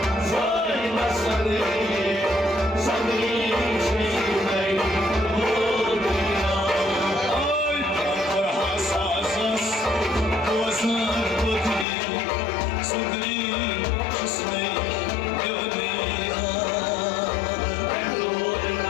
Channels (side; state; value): right; drops out; at 11.9 s